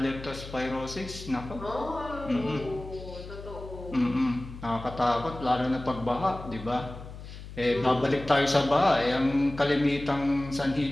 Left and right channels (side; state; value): left; noise; hum, 13 dB below the sound